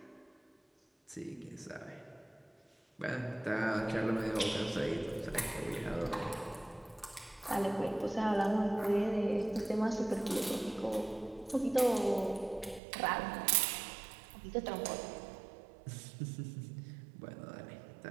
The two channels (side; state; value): left; drops out; at 12.8 s